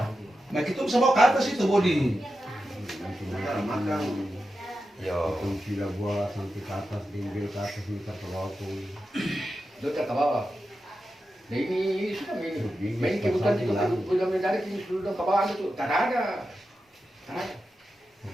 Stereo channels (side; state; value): both; normal; correlation 0.90